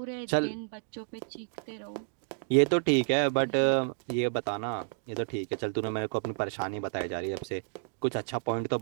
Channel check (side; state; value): left; silent; digital silence